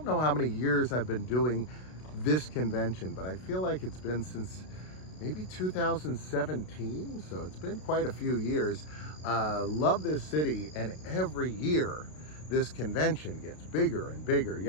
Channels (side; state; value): right; late; 32 ms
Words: know how many years I've been doing this convention, but I feel like it's been since maybe 2017, so it's been quite a few years. Love this city, and every year this convention gets bigger and bigger.